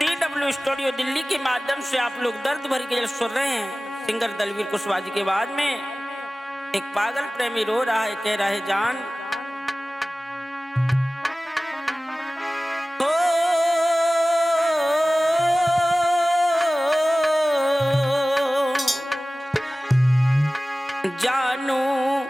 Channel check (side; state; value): both; normal; correlation 0.97